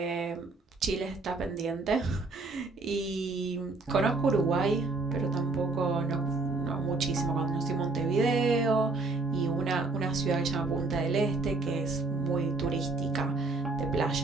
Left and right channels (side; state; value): left; quieter; 3.6 dB